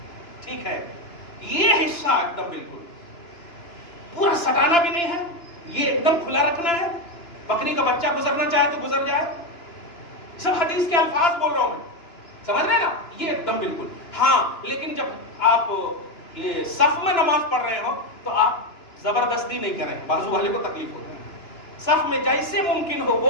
ٹھیک ہے، یہ حصہ ایک دم بالکل پورا سٹانا بھی نہیں ہے. یہ ایک دم کھلا رکھنا ہے. بکری کا بچہ گزرنا چاہے تو گزر جائے. سب حدیث کے الفاظ بول رہا ہوں میں، سمجھ رہے نا؟ یہ ایک دم بالکل. ہاں لیکن جب آپ یہ صف میں نماز پڑھ رہے ہو تو آپ زبردستی نہیں کریں، بازو والے کو تکلیف ہوتی ہے. صف میں جیسے ممکن ہو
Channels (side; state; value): right; late; 2.9 ms